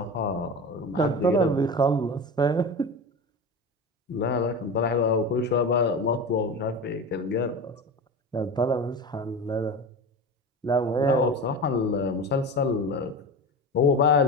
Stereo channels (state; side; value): normal; both; correlation 0.27